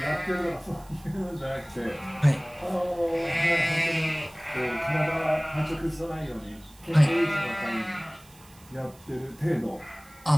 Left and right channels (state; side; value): noise; right; hiss, 25 dB below the sound